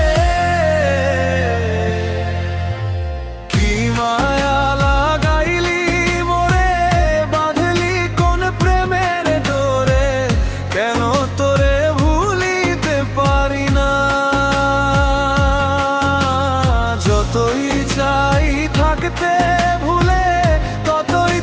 কি মায়া লাগাইলি মোরে, বাঁধলি কোন প্রেমের ডোরে, কেন তোরে ভুলিতে পারি না। যতই চাই থাকতে ভুলে, ততই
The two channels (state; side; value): identical; both; correlation 1.00